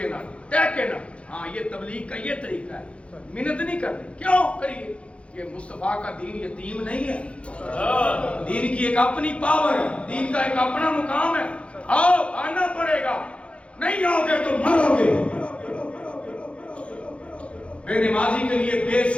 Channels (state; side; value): late; right; 0.061 ms